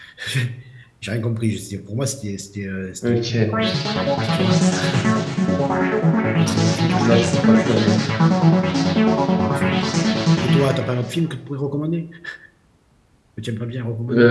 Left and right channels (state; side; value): identical; both; correlation 1.00